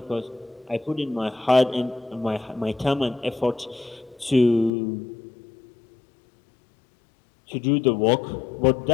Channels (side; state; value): right; drops out; at 4.7 s